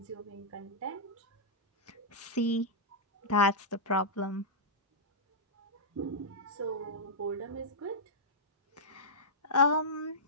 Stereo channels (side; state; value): both; normal; correlation -0.11